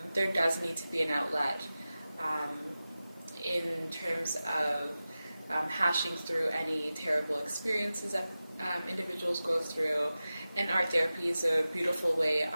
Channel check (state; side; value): inverted; both; correlation -0.95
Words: there does need to be an outlet in terms of hashing through any terrible experiences that individuals go through. And art therapy is a beautiful way